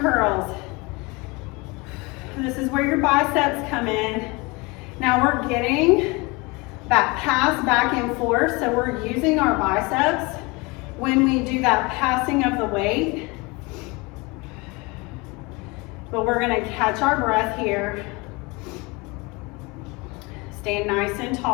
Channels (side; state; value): right; quieter; 25.6 dB